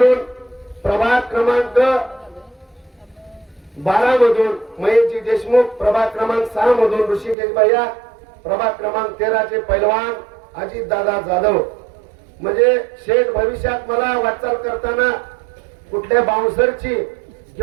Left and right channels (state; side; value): drops out; left; at 7.4 s